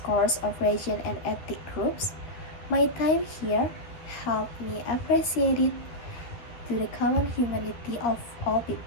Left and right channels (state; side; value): late; right; 13 ms